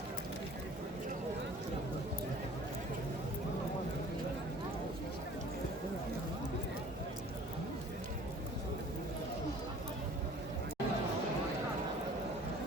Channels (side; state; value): both; normal; correlation 0.49